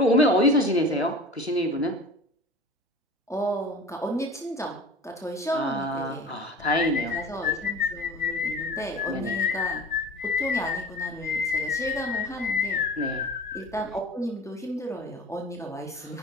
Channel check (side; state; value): both; normal; correlation 0.38